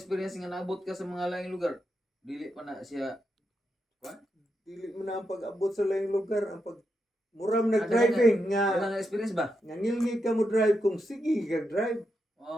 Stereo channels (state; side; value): normal; both; correlation 0.84